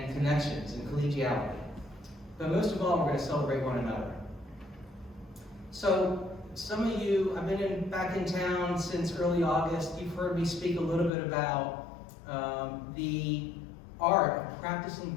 connections and collegiality. But most of all, we're going to celebrate one another. So some of you, I've been back in town since early August. You've heard me speak a little bit about the art of practicing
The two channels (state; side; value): drops out; right; at 11.1 s